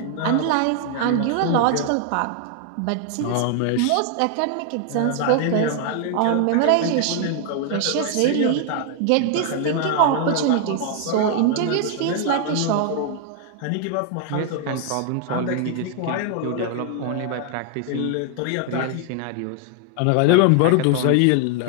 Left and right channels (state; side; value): different; both; correlation 0.00